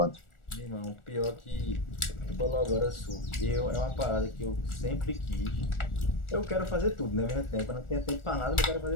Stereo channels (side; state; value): right; late; 1.4 ms